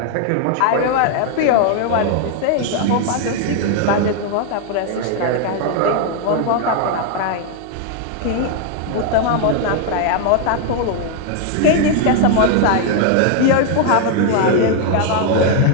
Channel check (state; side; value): different; both; correlation 0.00